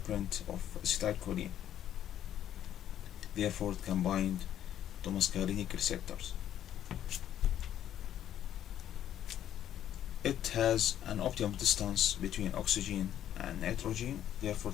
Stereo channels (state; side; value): quieter; right; 11.0 dB